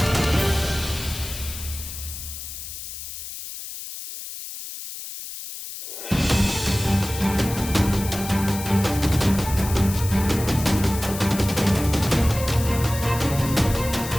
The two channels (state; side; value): noise; left; hiss, 10 dB below the sound